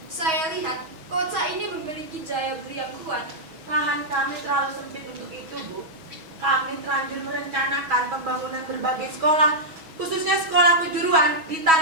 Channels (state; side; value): late; left; 6.3 ms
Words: Saya lihat kota ini memiliki daya beli yang kuat. Lahan kami terlalu sempit untuk itu, Bu. Kami terlanjur merencanakan pembangunan berbagai sekolah, khususnya sekolah kejuruan di